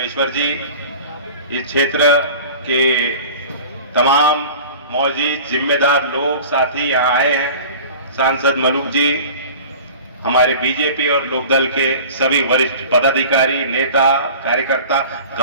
जी इस क्षेत्र के तमाम मौजूद जिम्मेदार लोग साथी यहाँ आए हैं। सांसद मलूक जी, हमारे बीजेपी और लोकदल के सभी वरिष्ठ पदाधिकारी, नेता, कार्यकर्ता,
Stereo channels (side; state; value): both; inverted; correlation -0.40